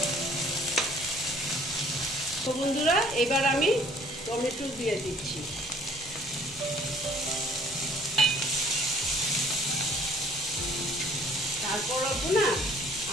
তো বন্ধুরা, এবার আমি টমেটো দিয়ে দিচ্ছি। তারপর না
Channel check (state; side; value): normal; both; correlation 0.58